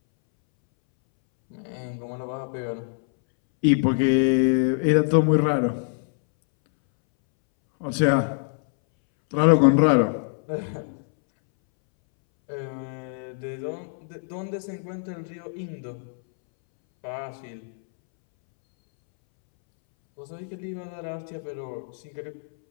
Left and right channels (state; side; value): silent; right; 62 dB below the other